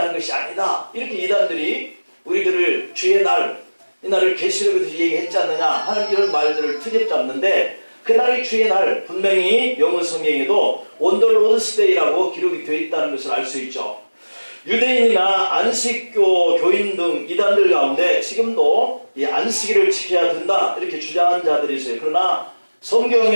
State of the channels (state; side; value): inverted; both; correlation -1.00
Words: 것이 아니다, 이렇게 이단들이 우리들을 주의 날, 이 날을 계시록에서 얘기했지 않느냐 하는 이런 말들을 트집잡는데, 그날이 주의 날, 분명히 영어 성경에도 On the Lord's Day라고 기록이 되어 있다는 것을 알 수 있죠. 유대인이나 안식교 교인 등 이단들 가운데 지금도 이 안식일을 지켜야 된다 이렇게 주장하는 자들이 있어요. 그러나